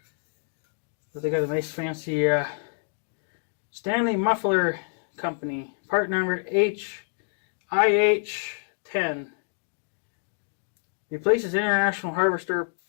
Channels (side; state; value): right; silent; digital silence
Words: But they got a nice fancy Stanley Muffler Company. Part number HIH10. Replaces International Harvester